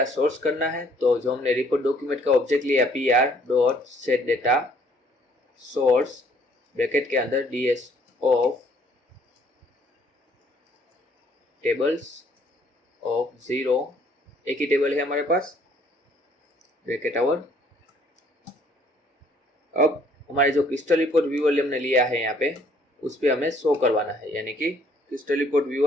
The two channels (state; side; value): normal; both; correlation 0.62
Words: सोर्स करना है, तो जो हमने रिपोर्ट डॉक्यूमेंट का ऑब्जेक्ट लिया pr dot set data source bracket के अंदर ds ऑफ टेबल्स ऑफ 0, एक ही टेबल है हमारे पास ब्रैकेट आवर। अब हमारे जो क्रिस्टल रिपोर्ट व्यूअर हमने लिया है यहाँ पे उस पे हमें शो करवाना है यानी कि crystal report